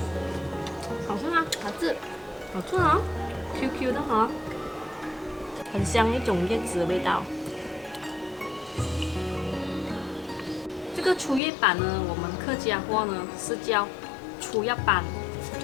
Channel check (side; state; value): right; drops out; at 11.4 s